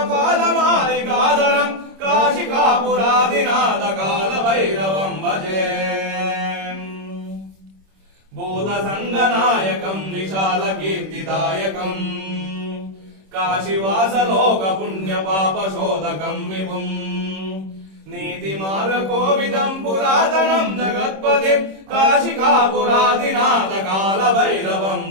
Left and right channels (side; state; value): left; late; 26 ms